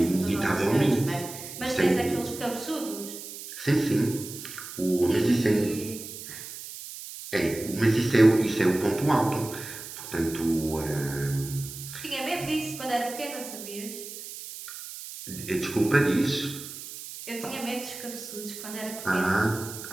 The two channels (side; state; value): right; noise; hiss, 11 dB below the sound